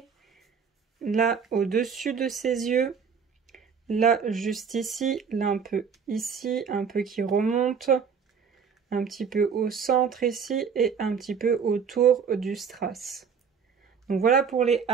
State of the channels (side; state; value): left; quieter; 6.4 dB